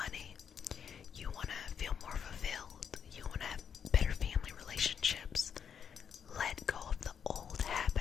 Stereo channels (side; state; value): right; quieter; 7.6 dB